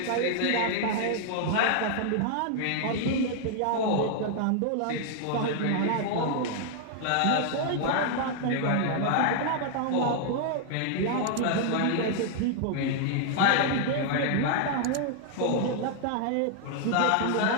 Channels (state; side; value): different; both; correlation 0.00